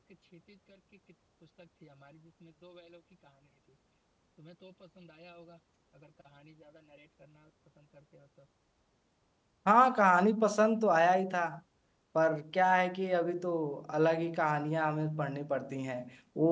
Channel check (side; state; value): both; identical; correlation 1.00